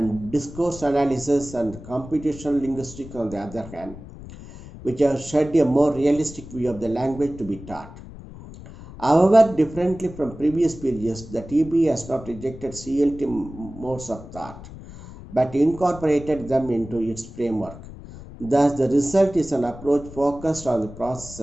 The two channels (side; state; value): left; noise; rumble, 15 dB below the sound